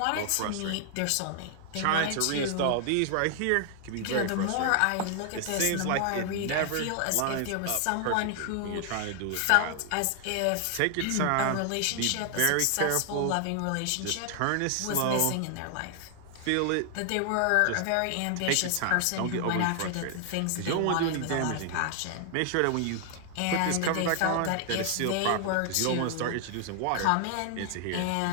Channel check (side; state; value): both; different; correlation 0.00